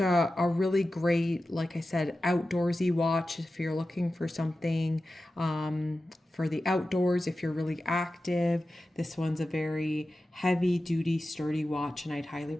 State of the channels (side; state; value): both; normal; correlation 0.93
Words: a really great, like I said, outdoorsy watch if you're looking for something for the outdoors, if you're really active. This one's a very heavy duty, sturdy watch, and I'd highly